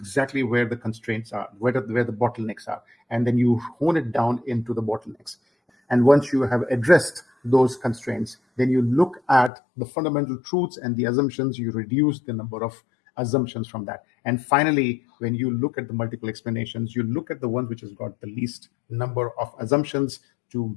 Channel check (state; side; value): drops out; right; at 9.5 s